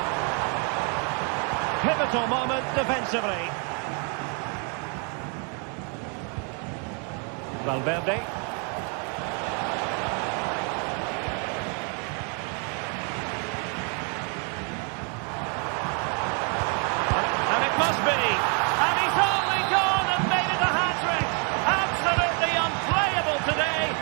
Pivotal moment defensively. Valverde. Must be, and he's only gone and made it a hat-trick. Absolutely unplayable today.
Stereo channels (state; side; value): quieter; left; 38.5 dB